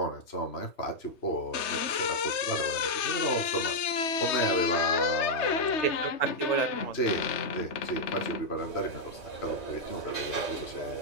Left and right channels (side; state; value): right; late; 3.2 ms